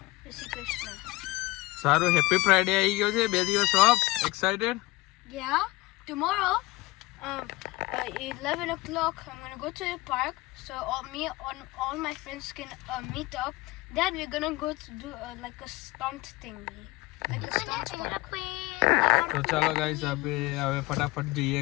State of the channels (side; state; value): right; quieter; 21.1 dB